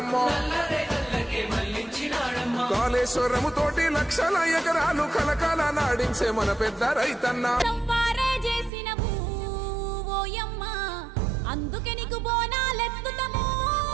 కాళేశ్వరము తోటి లక్షల ఎకరాలు కలకాల నాడించే మన పెద్ద రైతన్న. అందుకే నీకు బోనాలెత్తుతాము.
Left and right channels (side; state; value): left; drops out; at 8.7 s